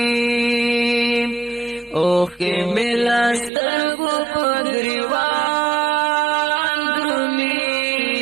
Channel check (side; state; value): left; drops out; at 3.5 s